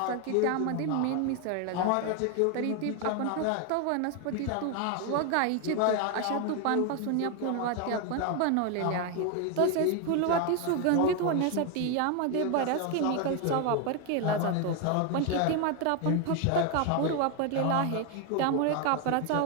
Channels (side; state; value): both; different; correlation 0.01